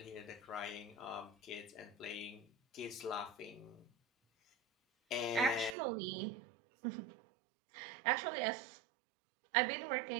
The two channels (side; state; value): left; drops out; at 5.8 s